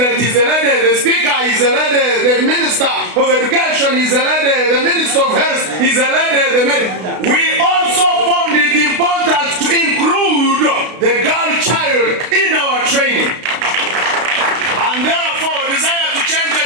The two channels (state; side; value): late; left; 32 ms